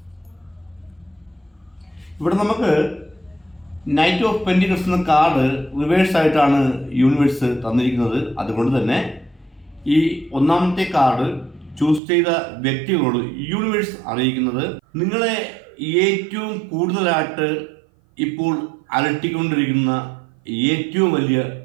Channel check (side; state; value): left; drops out; at 12.0 s